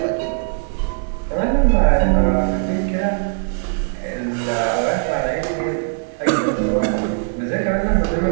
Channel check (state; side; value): silent; left; digital silence